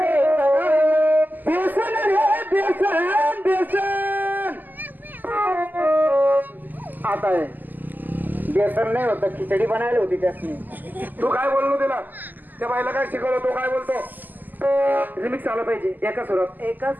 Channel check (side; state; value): left; late; 0.086 ms